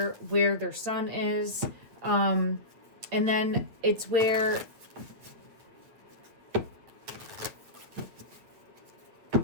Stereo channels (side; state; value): left; late; 9.0 ms